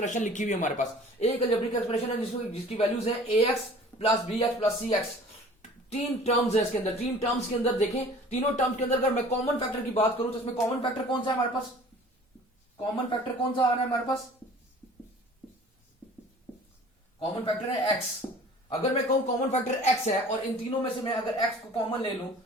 लिखी हुई है हमारे पास। एक अलजेब्रिक एक्सप्रेशन है जिसकी वैल्यूज है A X plus B X plus C X. 3 terms है इसके अंदर। 3 टर्म्स के अंदर देखें, तीनों टर्म्स के अंदर अगर मैं कॉमन फैक्टर की बात करूं तो इसमें कॉमन फैक्टर कौन सा है हमारे पास? कॉमन फैक्टर कौन सा आ रहा है हमारे पास? कॉमन फैक्टर है एक्स। अगर मैं कहूं कॉमन फैक्टर एक्स है और इन तीनों में से मैं अगर एक्स को कॉमन ले लूं,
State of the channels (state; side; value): normal; both; correlation 0.47